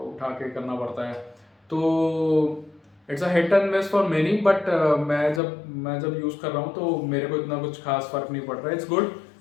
उठा के करना पड़ता है। तो it's a hit and miss for many, but मैं जब यूज़ कर रहा हूँ तो मेरे को इतना कुछ खास फर्क नहीं पड़ रहा है। इट्स गुड,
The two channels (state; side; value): drops out; right; at 5.4 s